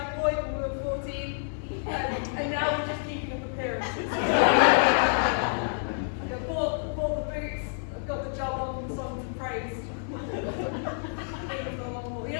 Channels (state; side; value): silent; right; digital silence